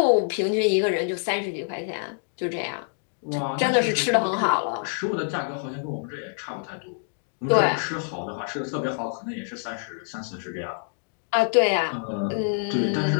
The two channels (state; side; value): silent; right; digital silence